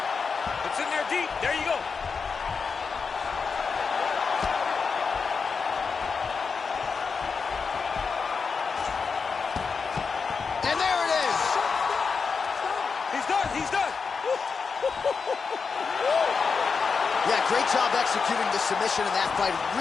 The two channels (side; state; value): right; quieter; 5.2 dB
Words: It's in there deep. There you go. And there it is. He's done. He's done. Yeah, great job executing the submission in that fight.